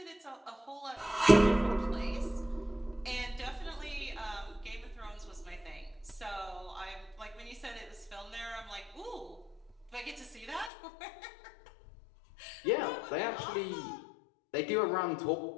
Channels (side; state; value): right; drops out; at 10.7 s